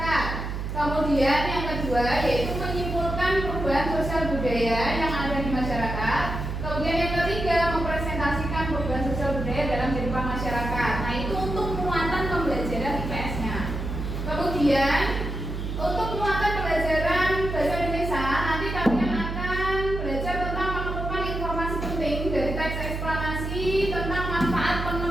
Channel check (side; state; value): right; noise; hum, 4 dB below the sound